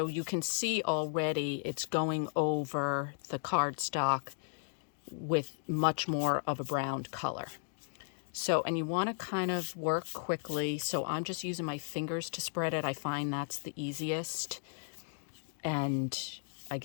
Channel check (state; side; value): silent; right; digital silence